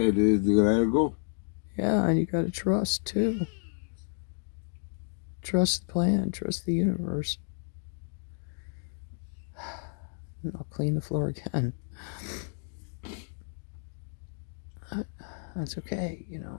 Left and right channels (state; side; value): silent; right; digital silence